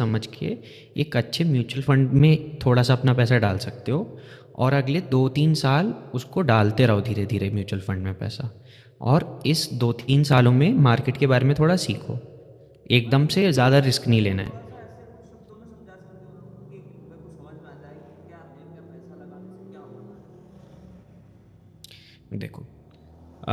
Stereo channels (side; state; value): both; identical; correlation 1.00